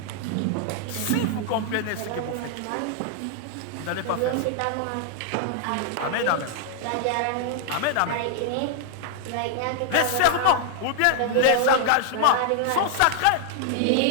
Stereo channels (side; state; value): both; different; correlation -0.01